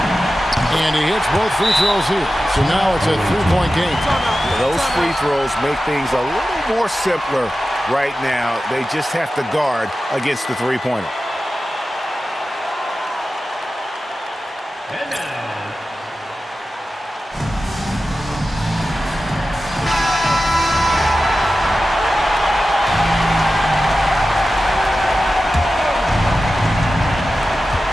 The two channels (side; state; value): both; normal; correlation 0.94